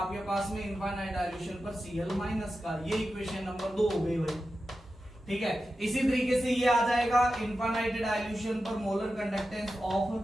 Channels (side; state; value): both; normal; correlation 0.92